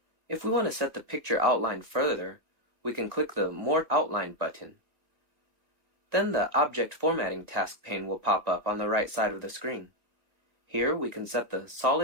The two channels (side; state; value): left; late; 2.0 ms